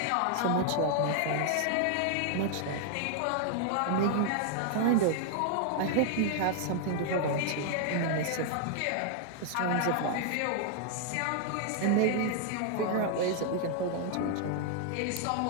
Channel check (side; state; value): both; different; correlation 0.00